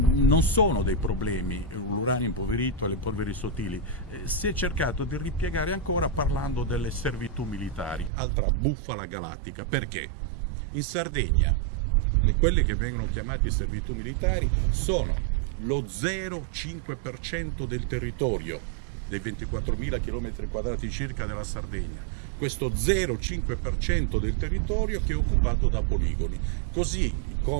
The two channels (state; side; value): drops out; left; at 8.1 s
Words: sono dei problemi l'uranio impoverito e le polveri sottili. Si è cercato di ripiegare ancora parlando delle servitù militari, altra bufala galattica. Perché? In Sardegna quelle che vengono chiamate servitù militari sono lo 0,5% del territorio, dei 24.000 km² circa della Sardegna. Questo 0,5% del territorio che è occupato da poligoni, così